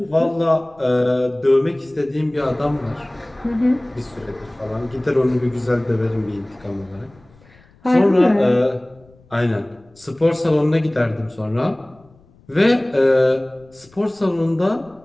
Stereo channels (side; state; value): left; noise; rumble, 29 dB below the sound